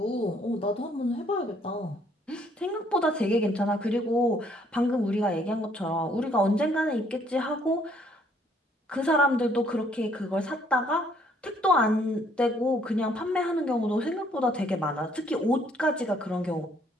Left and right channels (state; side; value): normal; both; correlation 0.65